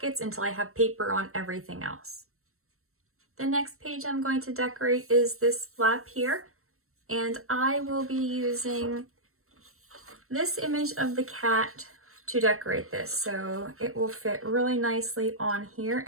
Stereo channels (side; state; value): left; late; 0.63 ms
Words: until I have paper on everything else. The next page I'm going to decorate is this flap here, and I will be using this image of the cat to decorate this. So it will fit really nicely on here,